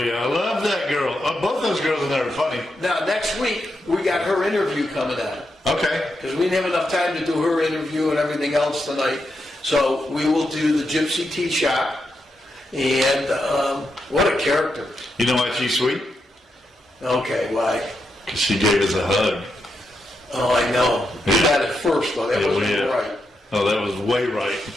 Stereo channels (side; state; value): both; normal; correlation 0.84